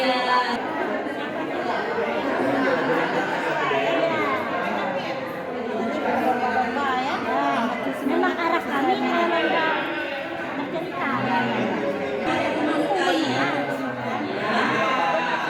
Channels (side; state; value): both; identical; correlation 1.00